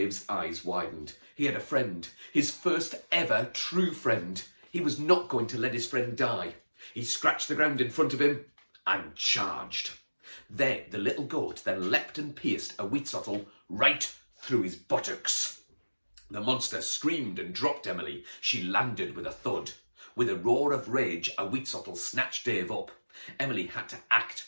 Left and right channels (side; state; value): both; inverted; correlation -1.00